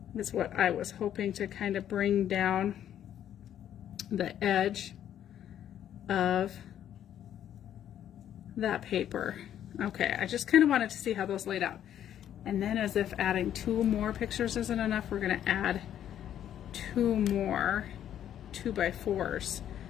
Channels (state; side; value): quieter; right; 10.5 dB